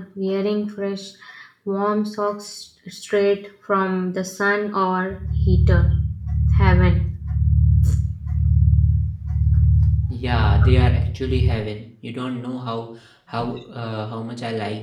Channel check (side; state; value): both; identical; correlation 1.00